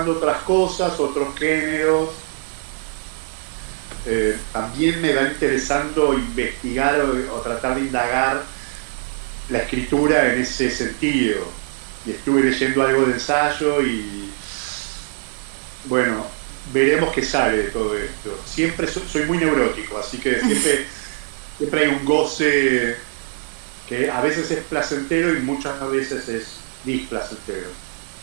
otras cosas, otros géneros, también me va interesando investigar o tratar de indagar la escritura en ese sentido. Y estuve leyendo algo de ensayo y bueno, veremos qué sale de todo esto. Siempre soy muy neurótico, así que siempre hay un goce que a veces es placentero y muchas veces es displacentero.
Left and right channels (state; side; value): silent; left; digital silence